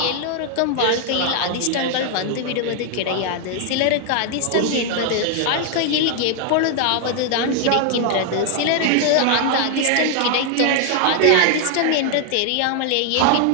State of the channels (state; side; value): different; both; correlation 0.00